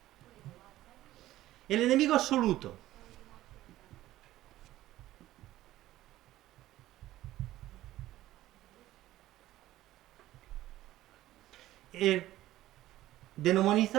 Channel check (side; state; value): left; quieter; 15.1 dB